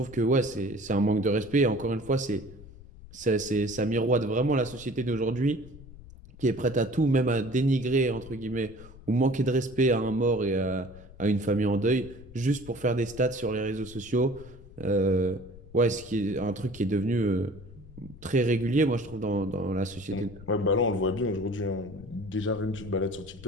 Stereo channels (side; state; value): left; noise; rumble, 19 dB below the sound